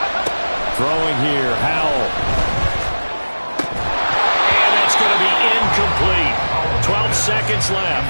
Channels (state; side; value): inverted; both; correlation -1.00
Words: Throwing here, Howell. And that's going to be incomplete. 12 seconds left.